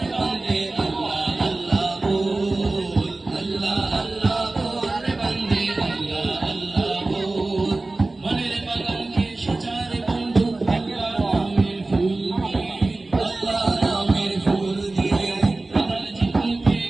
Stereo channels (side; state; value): left; quieter; 3.1 dB